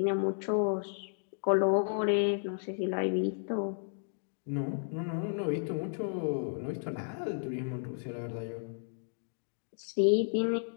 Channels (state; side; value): silent; right; digital silence